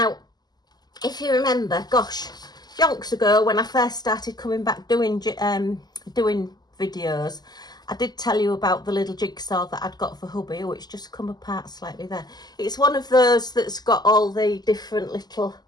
if you remember, gosh, yonks ago when I first started coming back doing videos, I did tell you about the little jigsaw that I'd got for hubby. Oh, it's just come apart slightly there. It's one of those that's got all the different little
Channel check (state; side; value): late; right; 0.20 ms